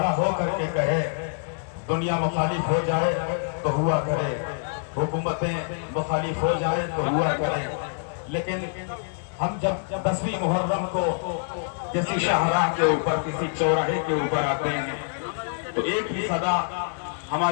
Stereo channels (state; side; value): silent; right; 61 dB below the other